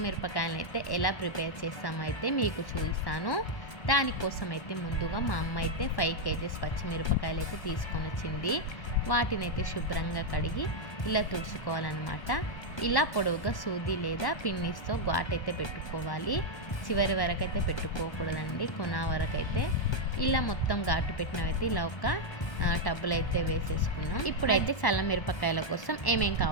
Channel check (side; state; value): right; late; 1.2 ms